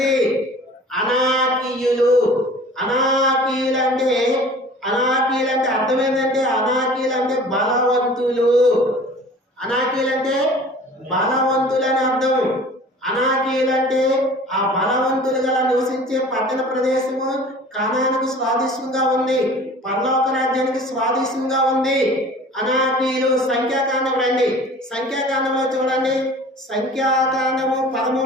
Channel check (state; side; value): normal; both; correlation 0.45